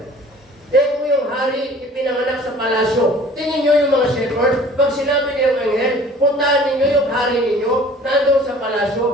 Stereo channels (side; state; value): both; normal; correlation 0.48